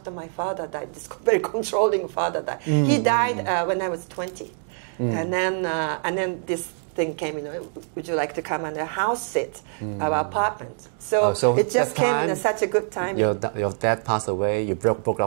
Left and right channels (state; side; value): silent; left; 56 dB below the other